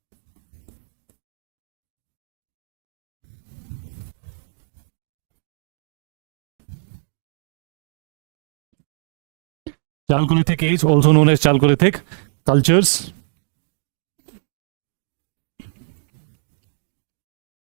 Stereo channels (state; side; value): silent; left; digital silence